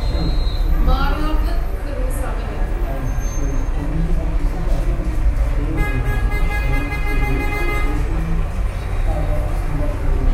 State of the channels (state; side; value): identical; both; correlation 1.00